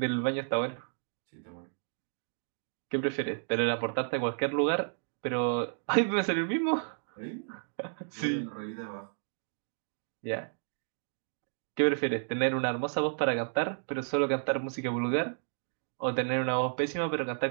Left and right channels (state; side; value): silent; left; digital silence